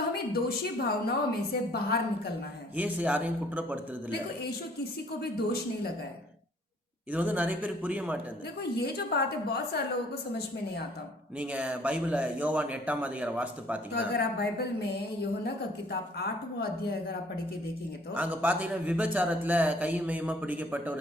हमें दोषी भावनाओं में से बाहर निकलना है। இயேசு யாரையும் குற்றப்படுத்துறது இல்ல. देखो, यीशु किसी को भी दोष नहीं लगाए। இது வந்து நிறைய பேருக்கு புரிய மாட்டேங்குது. देखो, ये जो बात है बहुत सारे लोगों को समझ में नहीं आता। நீங்க பைபிள யோவான் 8ஆம் அதிகாரம் வாசித்து तो பாத்தீங்கன்னா, अगर आप बाइबल में यूहन्ना का किताब 8वां अध्याय अगर आप पढ़ के देखेंगे तो அங்க பாத்தீங்கன்னா விபச்சாரத்துல கைமயமா பிடிக்கப்பட்ட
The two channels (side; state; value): both; normal; correlation 0.59